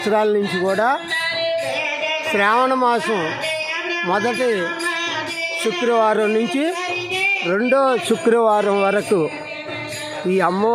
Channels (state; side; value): identical; both; correlation 1.00